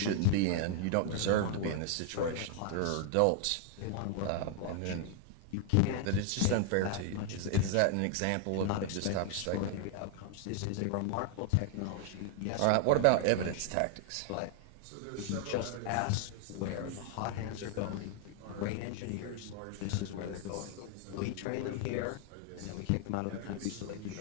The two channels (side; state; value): both; different; correlation 0.00